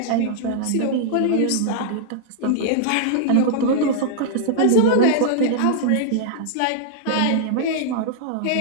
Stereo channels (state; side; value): different; both; correlation -0.01